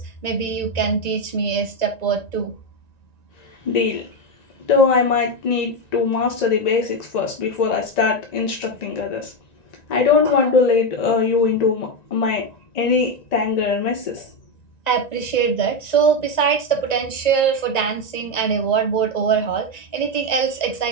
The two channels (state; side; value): late; right; 1.9 ms